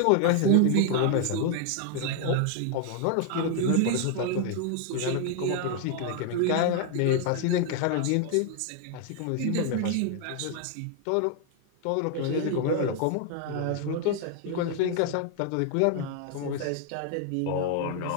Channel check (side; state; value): both; different; correlation 0.00